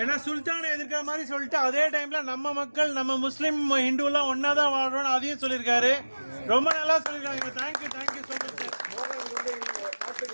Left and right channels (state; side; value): inverted; both; correlation -1.00